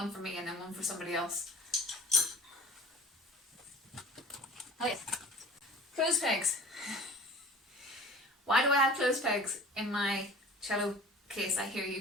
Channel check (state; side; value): normal; both; correlation 0.44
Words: for me and then one for somebody else. Oh yes. Clothes pegs. Why do I have clothes pegs in my cello case? I hear you